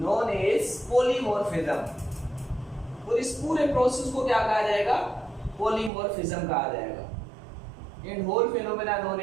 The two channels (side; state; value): left; drops out; at 5.9 s